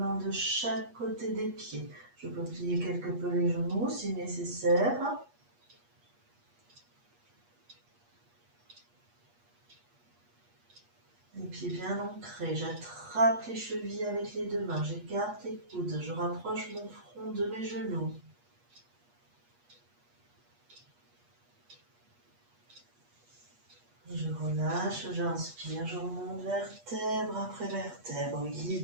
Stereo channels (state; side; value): late; left; 8.4 ms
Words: de chaque côté des pieds. Je peux plier quelque peu les genoux si nécessaire. Les pieds bien ancrés, j'attrape les chevilles avec les deux mains, j'écarte les coudes, je rapproche mon front de mes genoux. Et je relâche, j'inspire, je remonte vertèbre après vertèbre,